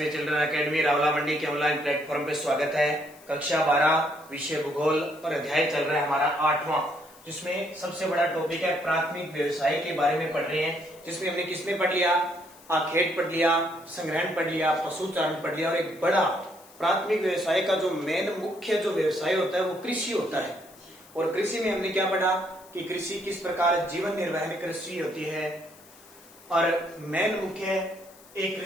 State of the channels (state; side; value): noise; left; hiss, 24 dB below the sound